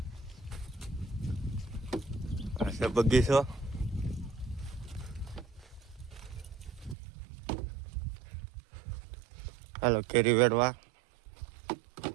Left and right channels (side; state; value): left; drops out; at 7.0 s